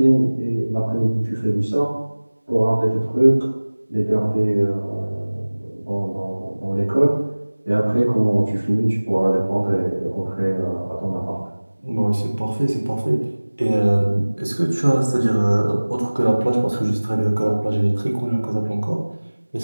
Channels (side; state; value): both; inverted; correlation -1.00